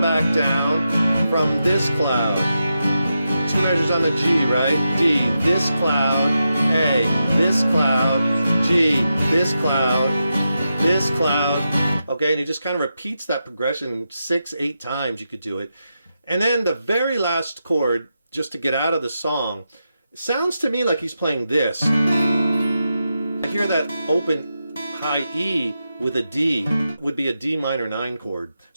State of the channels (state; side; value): inverted; both; correlation -0.88